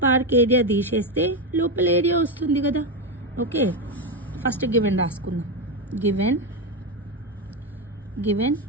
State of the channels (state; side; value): normal; both; correlation 0.11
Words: పార్క్ ఏరియా తీసేస్తే లోపల ఏరియా వస్తుంది కదా. ఓకే, ఫస్ట్ గివెన్ రాసుకుందాం. Given